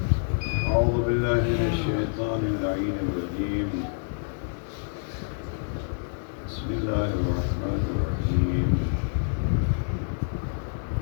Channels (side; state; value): right; silent; digital silence